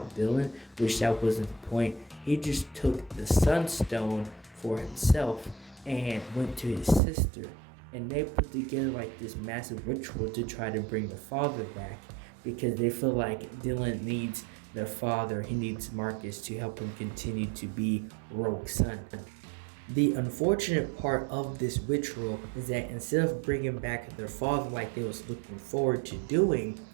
Dylan, which that wasn't the point. He just took the Sunstone for himself and went to his sister, and they put together like this massive ritual to try to bring the father back because they feel like Dylan needs their father. He needs Marcus to help him continue to be Rogue's son. The unfortunate part of this ritual is that instead of bringing back their father like they was looking forward to doing,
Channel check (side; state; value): left; drops out; at 7.0 s